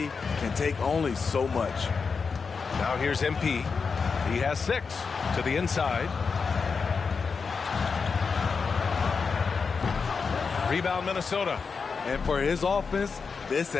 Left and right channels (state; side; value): quieter; right; 5.2 dB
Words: can take only so much. Now here's MP. He has 6 to the inside. Rebound Minnesota. And for his offense, this